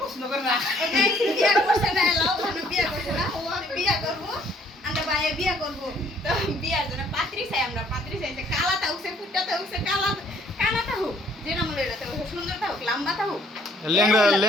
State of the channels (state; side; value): normal; both; correlation 0.62